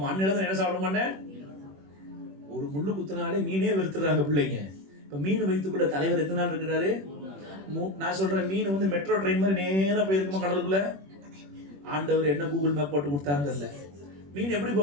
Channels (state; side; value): late; left; 21 ms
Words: அன்னையில தான் என்ன சாப்பிட மாட்டேன். ஒரு முள்ளு குத்தினாலே மீனே வெறுத்துறாங்க பிள்ளைங்க. இப்ப மீன் வயிற்றுக்குள்ள தலைவர் எத்தனை நாள் இருக்கிறாரு? நான் சொல்றேன், மீன் வந்து மெட்ரோ ட்ரெயின் மாதிரி நேரா போயிருக்குமா கடலுக்குள்ள? ஆண்டவர் என்ன கூகுள் மேப் போட்டு கொடுத்தான்னு தெரியல. மீன் எப்படி